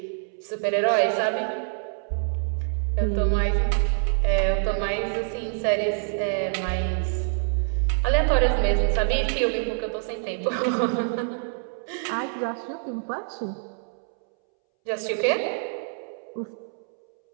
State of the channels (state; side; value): silent; left; 61 dB below the other